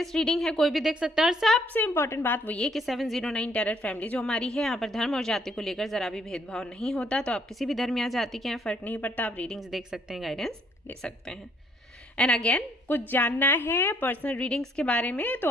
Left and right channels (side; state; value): both; normal; correlation 0.66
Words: रीडिंग है, कोई भी देख सकता है। और सबसे इंपॉर्टेंट बात वो ये कि 709 टैरेट फैमिली जो हमारी है, यहाँ पर धर्म और जाति को लेकर जरा भी भेदभाव नहीं होता। तो आप किसी भी धर्म या जाति के हैं, फर्क नहीं पड़ता, आप रीडिंग्स देख सकते हैं, गाइडेंस ले सकते हैं। एंड अगेन, कुछ जानना है पर्सनल रीडिंग्स के बारे में तो